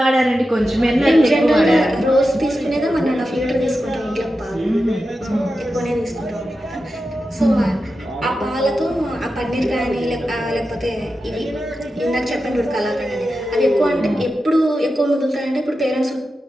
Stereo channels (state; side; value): normal; both; correlation 0.91